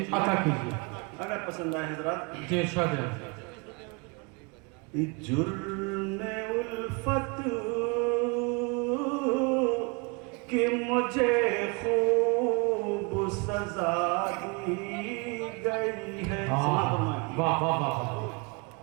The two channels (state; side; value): quieter; left; 31.0 dB